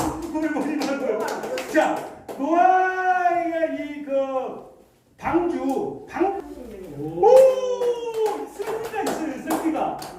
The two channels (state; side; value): identical; both; correlation 1.00